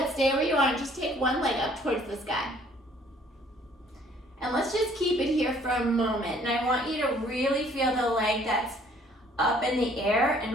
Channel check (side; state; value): both; normal; correlation 0.59